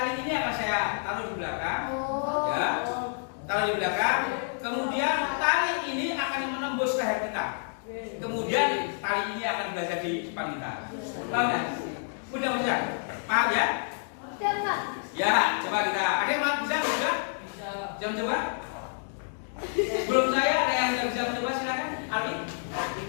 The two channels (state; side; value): silent; right; digital silence